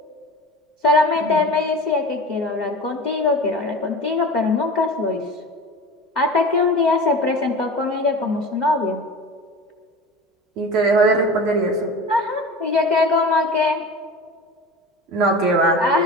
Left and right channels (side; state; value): both; normal; correlation 0.34